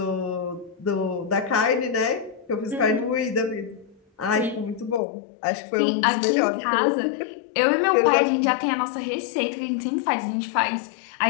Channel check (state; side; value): drops out; right; at 5.0 s